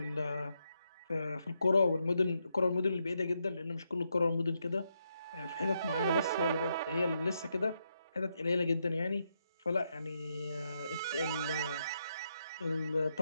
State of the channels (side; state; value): both; inverted; correlation -0.81